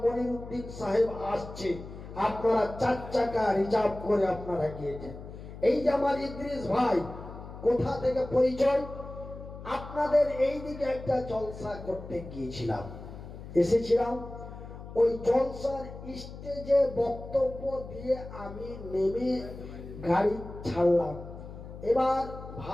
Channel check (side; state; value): left; noise; hum, 13 dB below the sound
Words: মনিরুদ্দিন সাহেব আসছে, আপনারা 4 চাকা রিজার্ভ করে আপনারা গিয়েছেন। এই যে আমার ইদ্রিস ভাই, কোথা থেকে পরিচয়, আপনাদের এই দিকে একটা জলসা করতে গিয়েছিলাম, এসেছিলাম। ওই জলসার স্টেজে বক্তব্য দিয়ে আমি নেমে গাড়ি ছাড়লাম। এবার